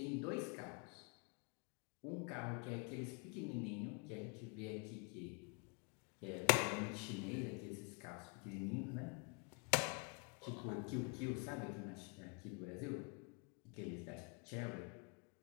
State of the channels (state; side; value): quieter; right; 35.5 dB